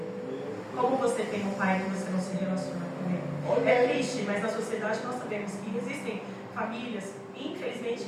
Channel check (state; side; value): identical; both; correlation 1.00